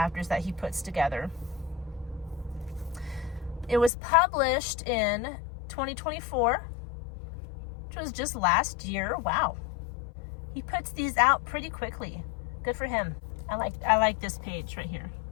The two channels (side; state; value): right; drops out; at 3.9 s